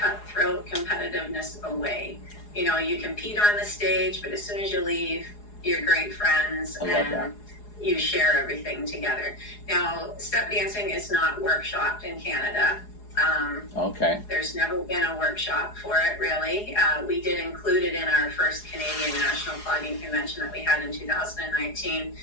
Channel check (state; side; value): late; right; 4.8 ms